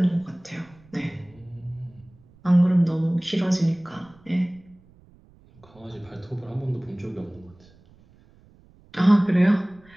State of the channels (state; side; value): noise; right; rumble, 28 dB below the sound